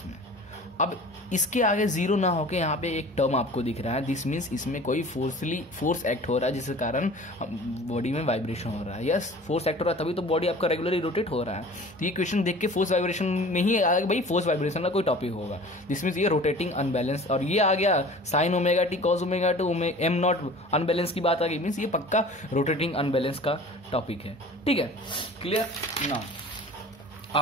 अब इसके आगे 0 ना होके यहाँ पे एक टर्म आपको दिख रहा है, दिस मीन्स इसमें कोई फोर्स एक्ट हो रहा है जिसके कारण बॉडी में वाइब्रेशन हो रहा है। यस, फोर्स एक्ट हो रहा है तभी तो बॉडी आपका रेगुलरली रोटेट हो रहा है। तो ये क्वेश्चन देख के फोर्स वाइब्रेशन में ही आएगा, भाई फोर्स वाइब्रेशन का कोई टॉपिक होगा, दिस मीन्स ये रोटेटिंग अनबैलेंस, और ये आ गया sine omega t cos omega two M naught unbalance की बात आ गई, मीन्स ये पक्का रोटेटिंग अनबैलेंस का टॉपिक है, ठीक है, क्लियर। नाउ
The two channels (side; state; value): both; normal; correlation 0.43